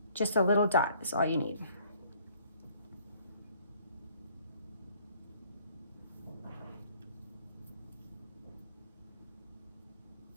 Just a little dot is all you need.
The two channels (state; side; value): inverted; both; correlation -0.59